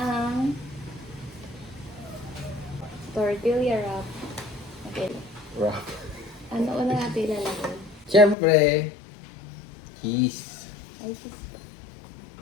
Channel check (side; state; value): right; drops out; at 8.3 s